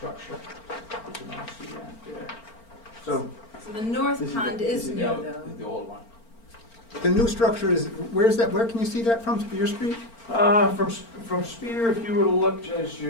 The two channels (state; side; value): late; right; 4.4 ms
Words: You can all see that there. So, So the north This pond this is new the- though. This is the old one. The new structure is, where's that, where can you see that from, Spear Street? from Spear, if you were to look as